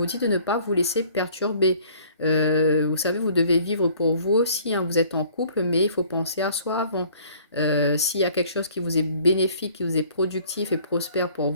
dit de ne pas vous laisser perturber. Vous savez, vous devez vivre pour vous aussi, hein. Vous êtes en couple, mais il faut penser à soi avant. S'il y a quelque chose qui vous est bénéfique, qui vous est productif et prospère pour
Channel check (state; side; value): inverted; both; correlation -0.55